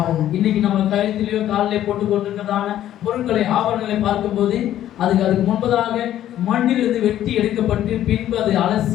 இன்னைக்கு நம்ம கழுத்திலேயோ காலிலே போட்டு கொண்டிருக்கிறதான பொருட்களை, ஆபரணங்களை பார்க்கும்போது அதுக்கு முன்பதாக மண்ணிலிருந்து வெட்டி எடுக்கப்பட்டு பின்பு அதை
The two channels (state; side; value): quieter; right; 12.1 dB